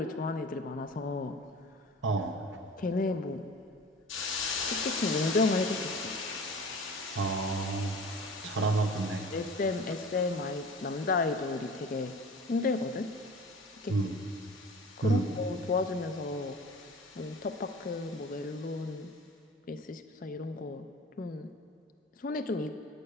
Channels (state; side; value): normal; both; correlation 0.40